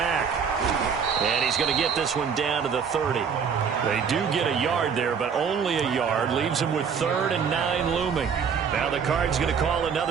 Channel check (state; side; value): quieter; left; 6.6 dB